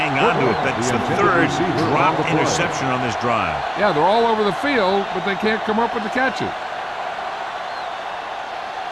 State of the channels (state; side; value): identical; both; correlation 1.00